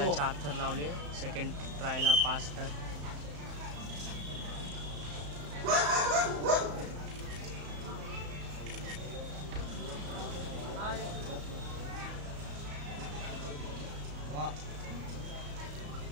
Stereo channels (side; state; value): left; late; 34 ms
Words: 4 थर लावले, सेकंड ट्रायला 5 थर.